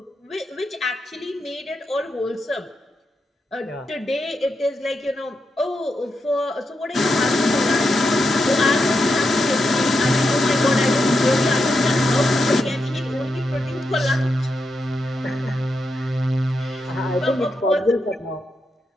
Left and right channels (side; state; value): both; normal; correlation 0.85